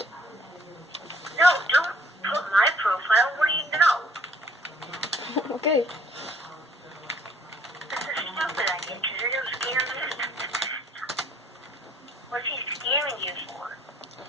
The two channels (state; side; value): normal; both; correlation 0.61